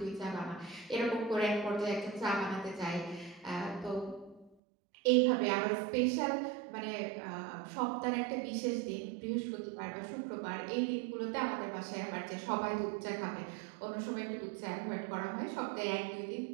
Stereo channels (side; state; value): left; drops out; at 4.5 s